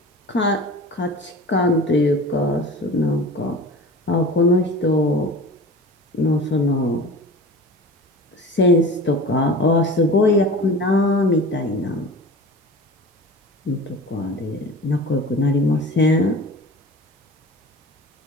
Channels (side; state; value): both; normal; correlation 0.37